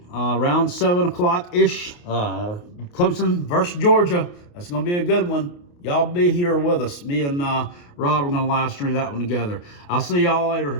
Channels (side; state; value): right; late; 28 ms